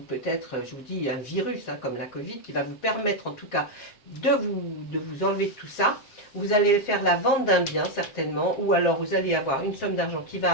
peut-être, je vous dis, un virus, hein, comme la Covid, qui va vous permettre en tout cas de vous enlever de tout ça. Vous allez faire la vente d'un bien, certainement, ou alors vous allez avoir une somme d'argent qui va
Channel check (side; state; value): right; late; 7.4 ms